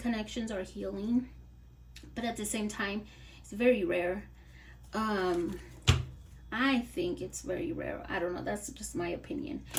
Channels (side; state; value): both; identical; correlation 1.00